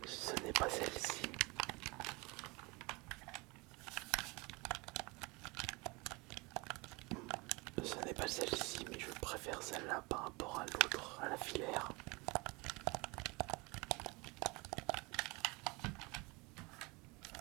Ce n'est pas celle-ci. Ce n'est pas celle-ci, mais je préfère celle-là par rapport à l'autre, à la filaire.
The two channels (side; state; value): left; quieter; 26.2 dB